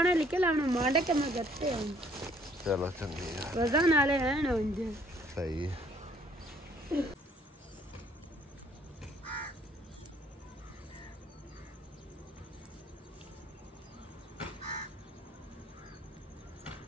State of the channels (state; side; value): normal; both; correlation 0.61